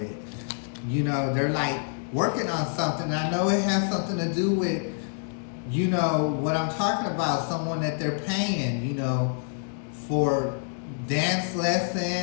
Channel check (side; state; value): right; silent; digital silence